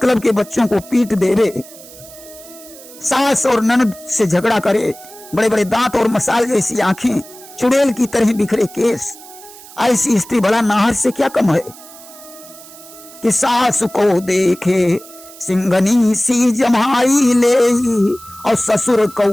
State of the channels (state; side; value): noise; right; hiss, 19 dB below the sound